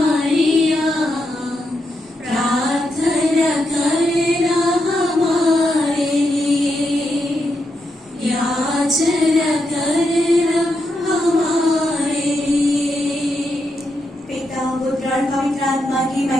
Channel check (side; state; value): both; normal; correlation 0.83